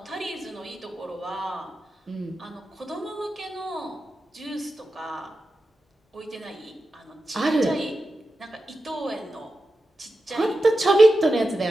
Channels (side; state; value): both; normal; correlation 0.91